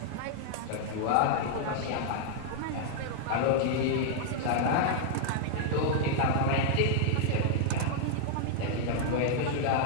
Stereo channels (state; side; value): different; both; correlation -0.01